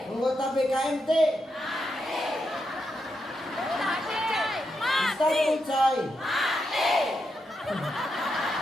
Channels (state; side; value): normal; both; correlation 0.84